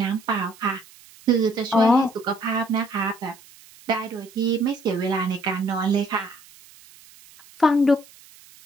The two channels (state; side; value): noise; right; hiss, 24 dB below the sound